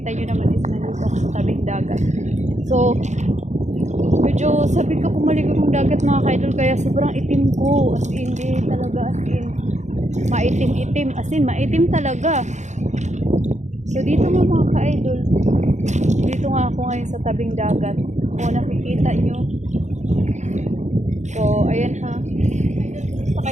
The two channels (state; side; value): late; left; 0.34 ms